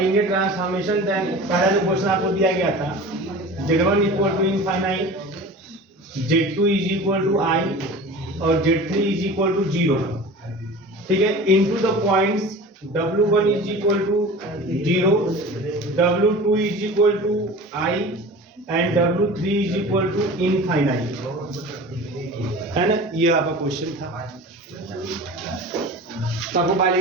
ट्रांसफॉर्मेशन। पहला जो क्वेश्चन आपको दिया गया था, Z1 equal to infinite, Z2 is equal to I और Z3 इज इक्वल टू 0, ठीक है, into the points W1 is equal to 0, W2 is equal to I and W3 is equal to infinite, है ना। ये आपका question था। तो आपको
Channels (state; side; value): normal; both; correlation 0.37